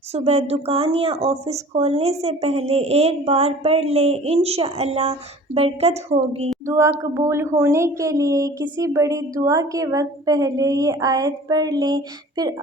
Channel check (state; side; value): normal; both; correlation 0.45